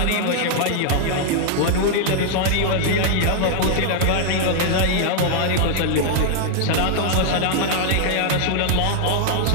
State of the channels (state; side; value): different; both; correlation 0.00